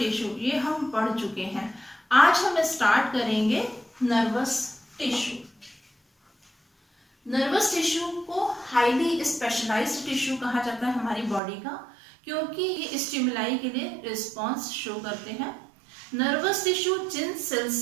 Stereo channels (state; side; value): drops out; left; at 11.4 s